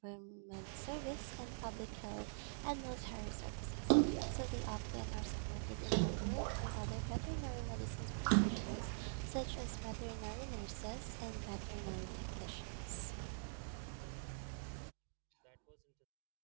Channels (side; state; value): left; silent; digital silence